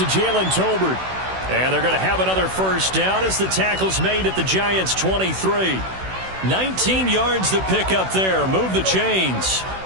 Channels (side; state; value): left; late; 16 ms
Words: Jalen Tolbert. And they're going to have another first down as the tackle's made at the Giants' 23. 19 yards to pick up there. Move the chains.